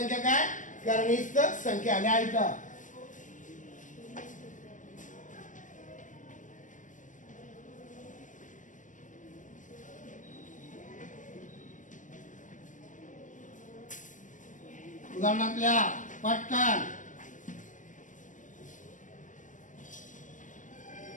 काय? करणीस्थ संख्या. लिहायचं. उदाहरणातल्या पटकन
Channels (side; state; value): right; late; 0.37 ms